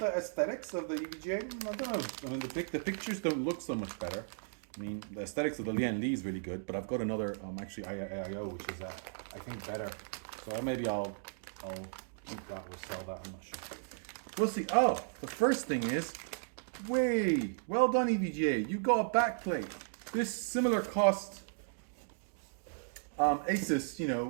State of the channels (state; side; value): silent; left; digital silence